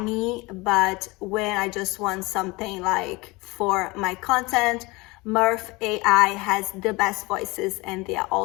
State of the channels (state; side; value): quieter; right; 23.8 dB